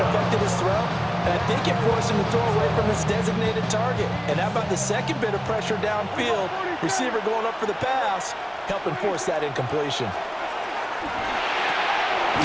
his throw, and I think it forced him to throw away from his designated target. And how about the second bit of pressure downfield? Receiver going up for the pass, helping force that incompletion.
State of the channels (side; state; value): both; identical; correlation 1.00